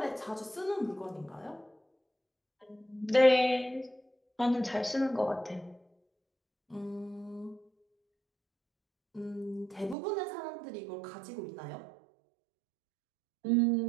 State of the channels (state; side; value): drops out; left; at 10.0 s